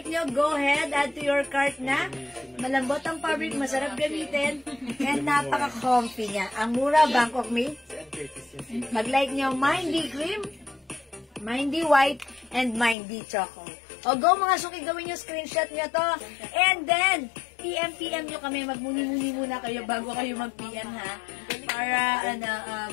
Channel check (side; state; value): right; drops out; at 13.0 s